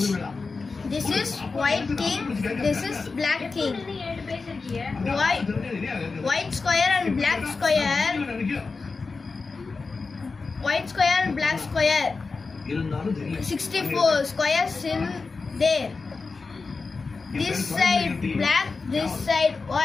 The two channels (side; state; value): right; quieter; 4.3 dB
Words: This is white king. This is black king. White square and black square. White square and black square. 64 squares in there. This side black, this side